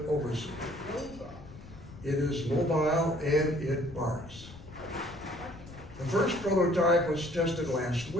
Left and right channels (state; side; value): noise; left; rumble, 17 dB below the sound